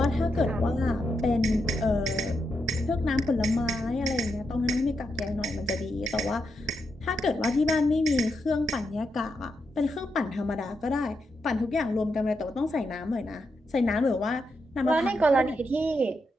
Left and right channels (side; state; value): both; normal; correlation 0.84